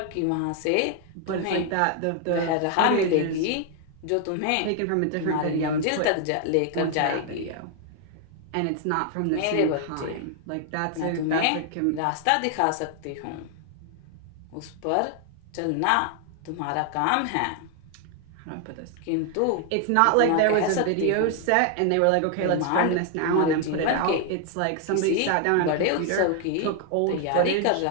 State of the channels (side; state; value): both; different; correlation 0.00